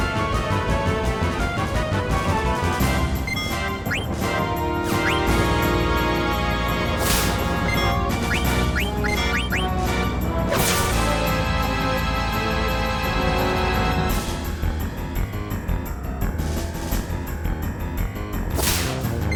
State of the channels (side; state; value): both; identical; correlation 1.00